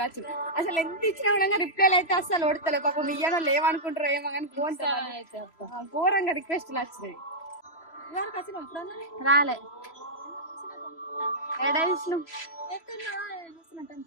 అసలు ఎంత ఇచ్చినా కూడా రిప్లైలు అయితే అసలు ఓడతలే. పాపం ఇయ్యనో లేవనుకుంటారో ఏమో కానీ ఘోరంగా రిక్వెస్ట్లు వచ్చినాయి. రాలే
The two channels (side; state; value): right; late; 3.0 ms